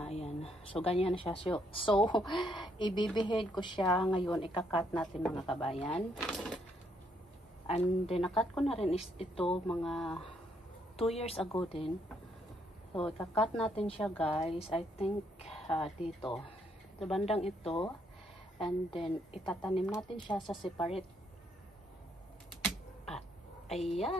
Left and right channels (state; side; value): normal; both; correlation 0.72